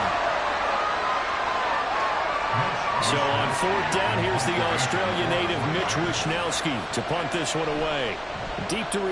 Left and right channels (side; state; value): both; identical; correlation 1.00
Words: So on fourth down, here's the Australia native Mitch Wishnowsky to punt this one away. Deep to